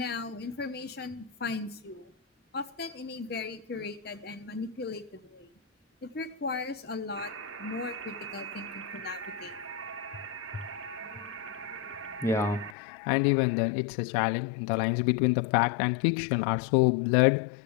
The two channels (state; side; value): drops out; right; at 12.8 s